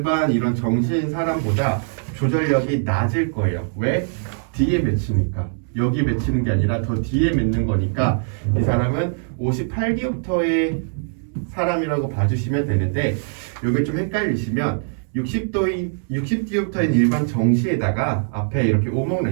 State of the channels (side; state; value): left; silent; 64 dB below the other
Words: 이런 정시인 사람보다 조절력이 낮을 거예요. 왜? 뒤에 맺히니까. 여기 맺히는 게 아니라 더 뒤에 맺는 거니까 이 사람은 58디옵터의 사람이라고 봐주시면 되는데, 여기 좀 헷갈리시면 60디옵터인 일반 정시에다가 앞에 이렇게 오목